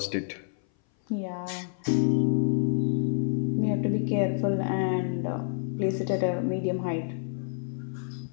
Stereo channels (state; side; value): silent; right; 57 dB below the other